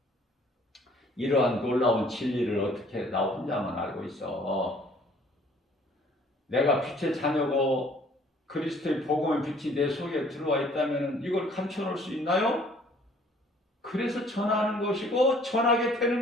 이러한 놀라운 진리를 어떻게 나 혼자만 알고 있어. 내가 빛의 자녀고 그리스도의 복음의 빛이 내 속에 들어와 있다면 이걸 감춰놓을 수 있나요? 그래서 전하는 것이고 전하게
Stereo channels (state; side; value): normal; both; correlation 0.57